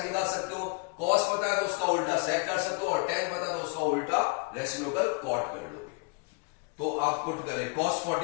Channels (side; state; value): right; quieter; 33.0 dB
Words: निकाल सकते हो, कॉस पता है तो उसका उल्टा सेक कर सकते हो, और टेन पता है तो उसका उल्टा रेसिप्रोकल कॉट कर लोगे। तो आप पुट करें cos